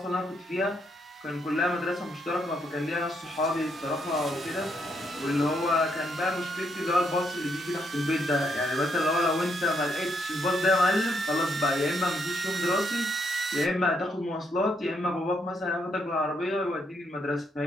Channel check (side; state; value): both; normal; correlation 0.76